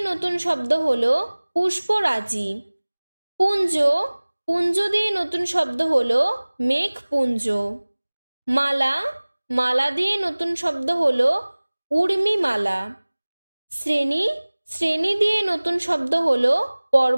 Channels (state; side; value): inverted; both; correlation -1.00